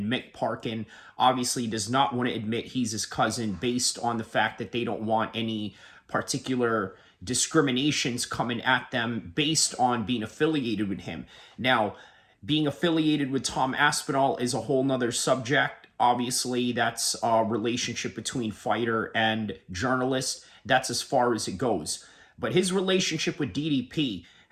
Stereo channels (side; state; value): both; identical; correlation 1.00